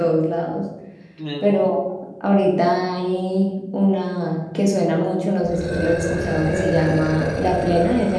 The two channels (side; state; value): both; identical; correlation 1.00